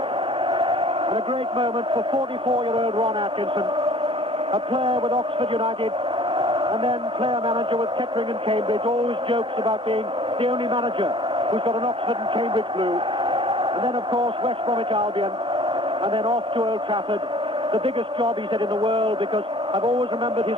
And a great moment for 44-year-old Ron Atkinson, a player with Oxford United, and then player-manager with Kettering and Cambridge, always jokes about being the only manager who's got an Oxford and Cambridge blue. And then, of course, West Bromwich Albion, and then off to Old Trafford. The biggest job, he said, in the world, because I've always remembered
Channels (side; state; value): both; normal; correlation 0.50